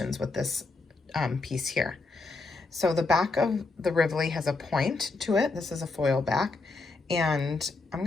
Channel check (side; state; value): right; quieter; 3.6 dB